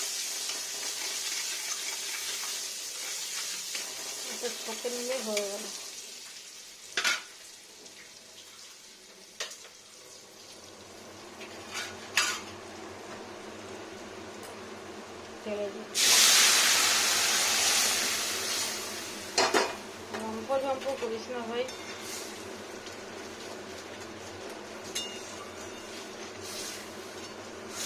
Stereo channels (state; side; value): identical; both; correlation 1.00